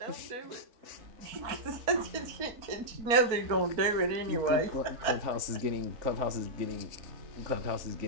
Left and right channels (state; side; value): late; left; 4.4 ms